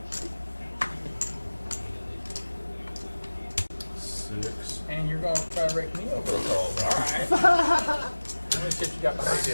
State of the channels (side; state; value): both; inverted; correlation -1.00